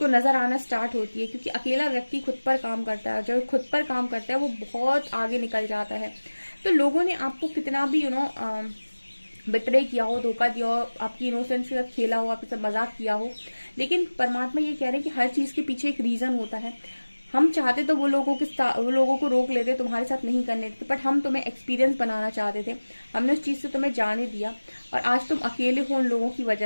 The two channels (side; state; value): both; inverted; correlation -1.00